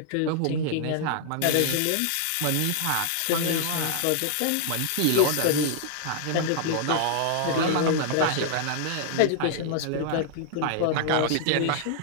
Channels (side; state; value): both; different; correlation -0.01